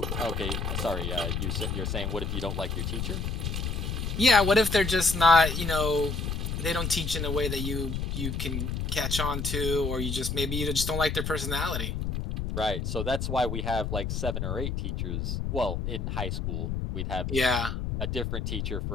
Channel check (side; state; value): left; noise; rumble, 2 dB below the sound